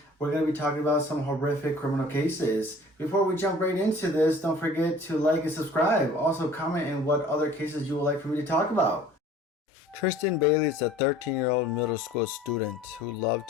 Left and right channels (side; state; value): both; normal; correlation 0.48